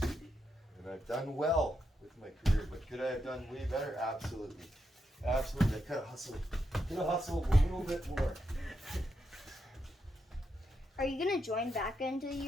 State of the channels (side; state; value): both; normal; correlation 0.83